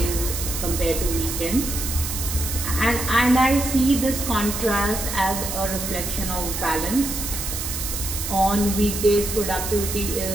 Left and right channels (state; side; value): noise; right; hiss, 4 dB below the sound